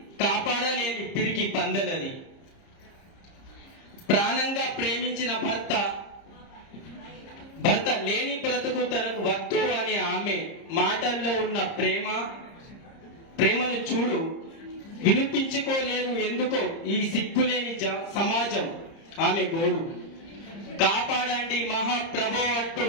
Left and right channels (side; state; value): right; late; 30 ms